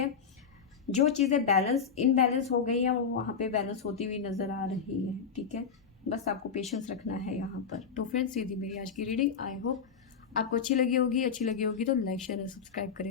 जो चीज़ें बैलेंस इनबैलेंस हो गई हैं वो वहाँ पे बैलेंस होती हुई नज़र आ रही है, ठीक है। बस आपको पेशेंस रखना है यहाँ पर। तो फ्रेंड्स, ये थी मेरी आज की रीडिंग। आई होप आपको अच्छी लगी होगी। अच्छी लगी होगी तो लाइक शेयर और सब्सक्राइब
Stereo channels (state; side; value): quieter; right; 6.4 dB